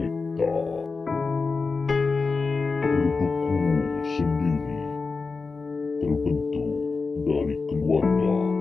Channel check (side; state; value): right; quieter; 4.3 dB